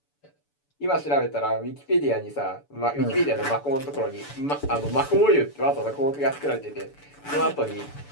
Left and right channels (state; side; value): late; right; 6.9 ms